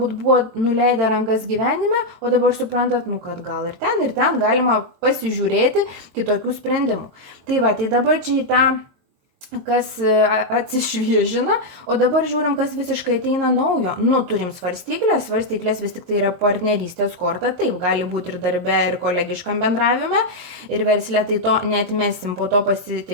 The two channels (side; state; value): left; late; 22 ms